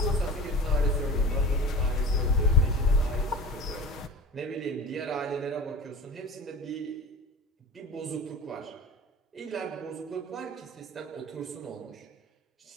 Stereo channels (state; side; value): normal; both; correlation 0.36